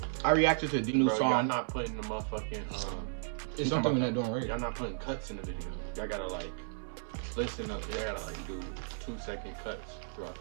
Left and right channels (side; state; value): left; silent; 55 dB below the other